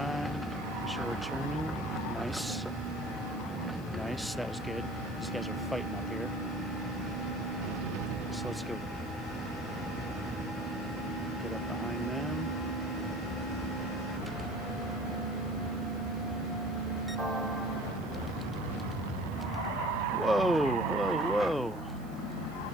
Make sure we're turning. Nice. Nice. That was good. These guys are fighting up here. So let's go.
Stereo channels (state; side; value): noise; right; hiss, 24 dB below the sound